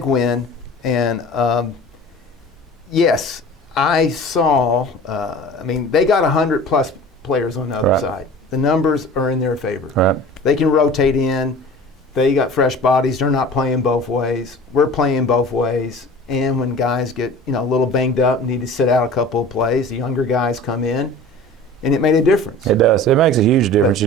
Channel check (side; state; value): both; normal; correlation 0.41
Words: win, and yes, I saw. They got 100+ players on the other Right. side. The numbers are in their favor. Right. They can rotate in. They got fresh bodies. They're not playing both ways. We're playing both ways. And when guys get a little banged up and need to sit out a couple of plays, the younger guys come in, and it made a difference. It does. It makes a huge difference,